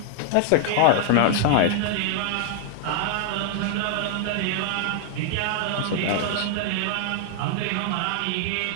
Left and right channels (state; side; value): different; both; correlation 0.00